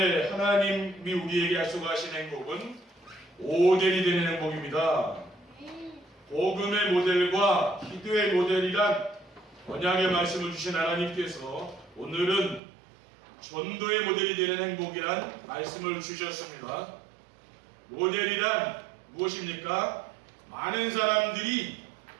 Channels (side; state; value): left; drops out; at 12.6 s